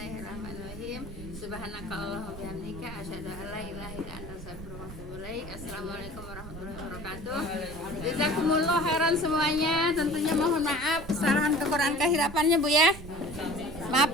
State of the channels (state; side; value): noise; right; rumble, 12 dB below the sound